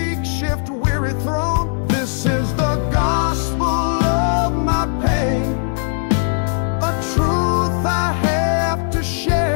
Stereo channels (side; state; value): right; silent; digital silence